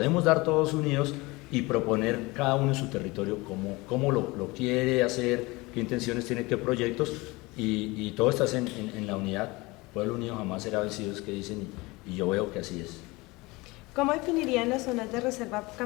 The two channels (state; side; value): quieter; right; 23.1 dB